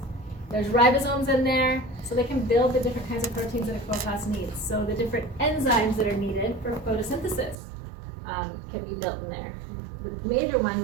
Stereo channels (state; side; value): drops out; left; at 7.6 s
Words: There's ribosomes in there, so they can build the different kinds of proteins that a chloroplast needs. So the different enzymes that are needed for photosynthesis can be built in there. The major one,